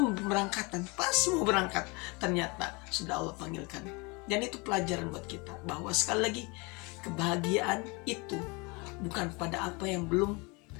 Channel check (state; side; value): quieter; right; 28.0 dB